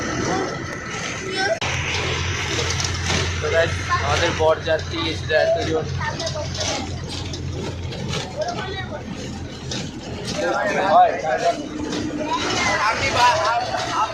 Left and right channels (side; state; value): both; identical; correlation 1.00